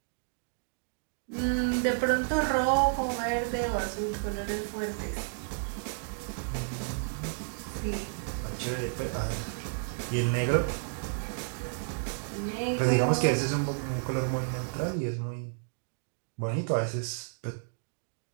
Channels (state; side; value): silent; left; digital silence